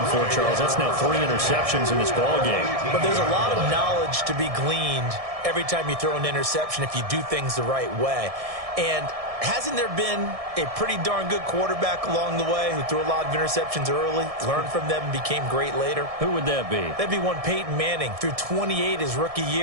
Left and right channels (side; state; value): left; late; 1.6 ms